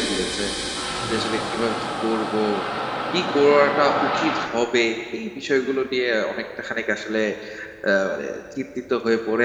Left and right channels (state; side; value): identical; both; correlation 1.00